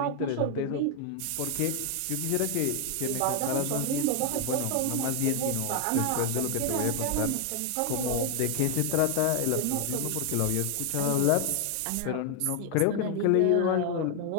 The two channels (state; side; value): different; both; correlation 0.00